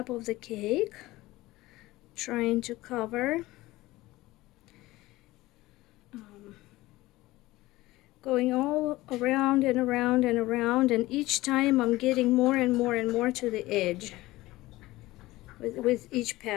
of the cake, trying to cover, going all around and around and around, and each time I'm getting more and more and more to the edge with each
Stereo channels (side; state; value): right; quieter; 18.4 dB